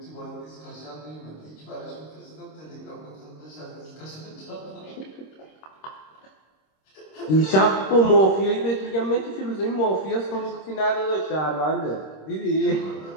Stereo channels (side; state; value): right; late; 26 ms